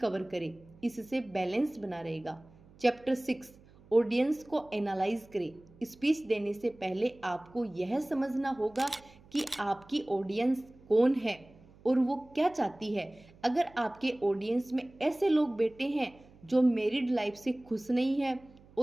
करें, इससे बैलेंस बना रहेगा। चैप्टर 6 ऑडियंस को एनालाइज करें। स्पीच देने से पहले आपको यह समझना होगा कि आपकी ऑडियंस कौन है और वो क्या चाहती है। अगर आपके ऑडियंस में ऐसे लोग बैठे हैं जो मैरिड लाइफ से खुश नहीं है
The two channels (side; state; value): right; noise; hum, 25 dB below the sound